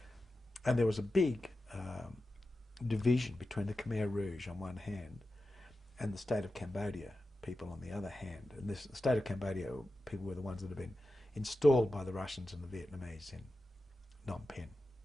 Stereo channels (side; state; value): both; normal; correlation 0.92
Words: And there was a big division between the Khmer Rouge on one hand and the state of Cambodia people on the other hand. And the state of Cambodia people were the ones that had been installed by the Russians and the Vietnamese in Phnom Penh.